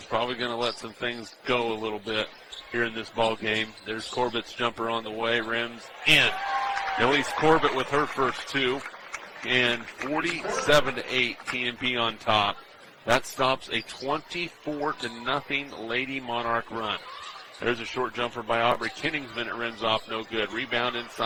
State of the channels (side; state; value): both; identical; correlation 1.00